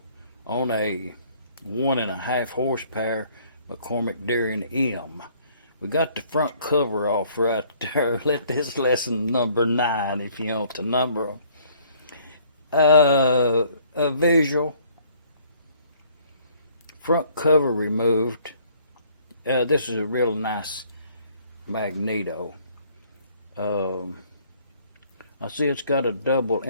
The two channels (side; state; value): both; inverted; correlation -0.60